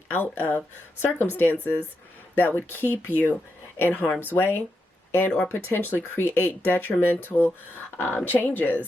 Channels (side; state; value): both; normal; correlation 0.85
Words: out of circumstances that would keep you in harm's way and or potentially create detrimental